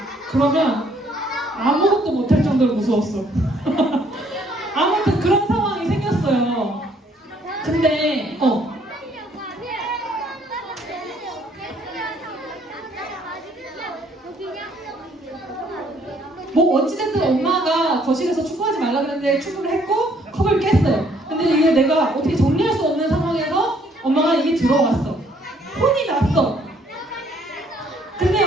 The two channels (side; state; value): both; normal; correlation 0.65